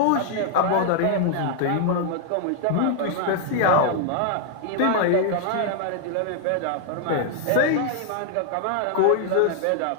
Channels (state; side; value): different; both; correlation 0.00